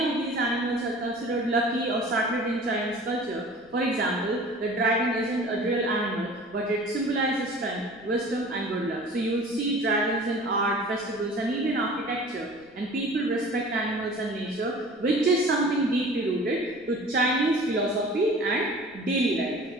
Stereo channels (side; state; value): left; noise; rumble, 29 dB below the sound